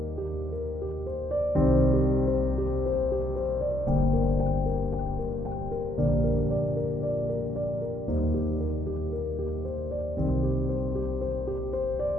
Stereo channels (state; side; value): normal; both; correlation 0.73